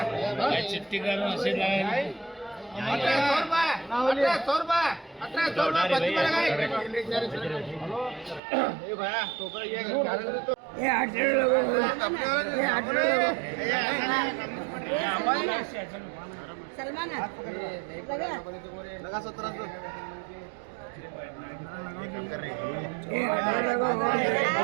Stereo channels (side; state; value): left; drops out; at 8.4 s